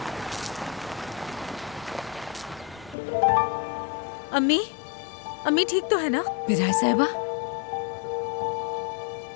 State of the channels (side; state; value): right; drops out; at 3.0 s